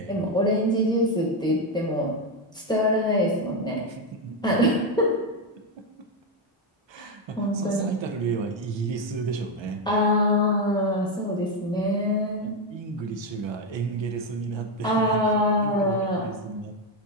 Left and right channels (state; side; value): normal; both; correlation 0.07